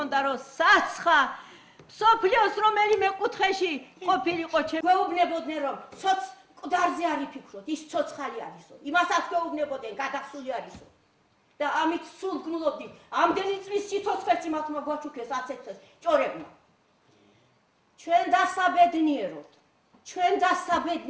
რომ საცხა მსოფლიოს რომელიმე კუთხეში ყოფილიყო ჩვენ გვეუბნებოდნენ რომ ცოც მკვდარზე არ იფიქროთ ის ცოცხალი არისო იმასაც გვეუბნებოდნენ გადახსული არისო და ამით სულ გნულობდით ამდენი წლის სიცოცხლეც იმათმა გვაჩუქეს აცეთეს ჭორებმა ჩვენ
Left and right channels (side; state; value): both; identical; correlation 1.00